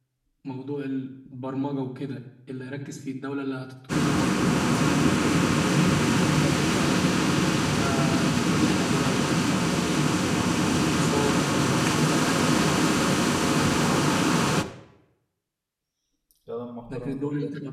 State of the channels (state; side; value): identical; both; correlation 1.00